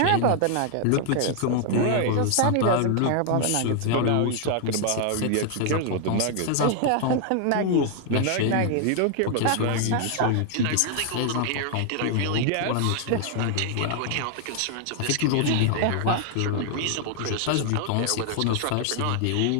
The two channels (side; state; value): both; different; correlation 0.00